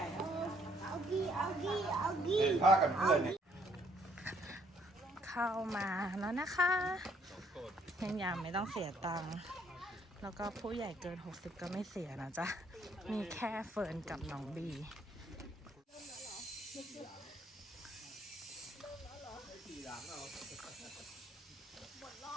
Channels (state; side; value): normal; both; correlation 0.66